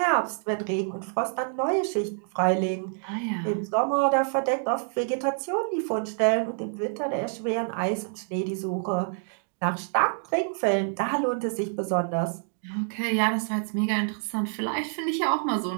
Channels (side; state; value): left; silent; 60 dB below the other